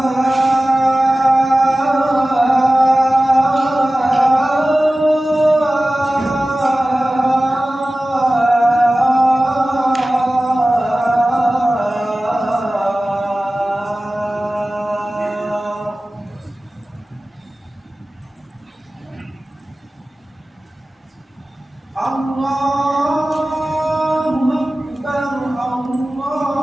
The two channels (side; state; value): both; normal; correlation 0.96